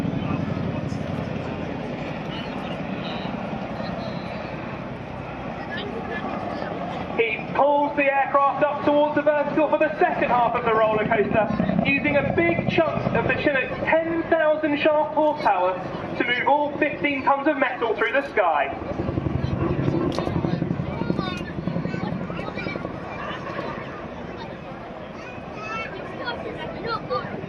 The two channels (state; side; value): identical; both; correlation 1.00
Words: He pulls the aircraft up towards the vertical for the second half of the roller coaster, using a big chunk of the Chinook's 10,000 shaft horsepower to move all 15 tons of metal through the sky.